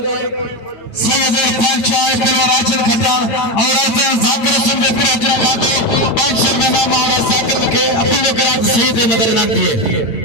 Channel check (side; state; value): right; late; 8.8 ms